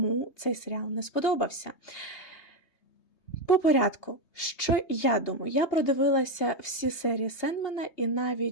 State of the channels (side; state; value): right; late; 3.2 ms